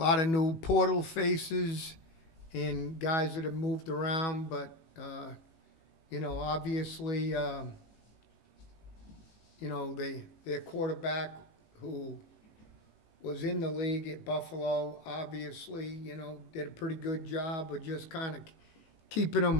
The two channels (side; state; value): right; late; 19 ms